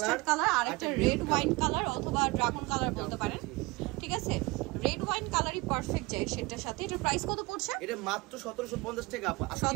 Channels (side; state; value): left; quieter; 23.4 dB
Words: কালার, আর একটা রেড ওয়াইন কালার অথবা ড্রাগন কালার বলতে পারেন, ঠিক আছে? রেড ওয়াইন কালারই পারফেক্ট যায় সেটার সাথে। এটার প্রাইস কত পড়ছে? এটা মাত্র 1750 টাকা।